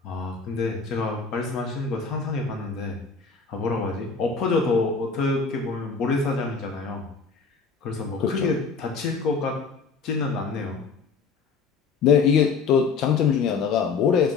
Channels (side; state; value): right; quieter; 5.1 dB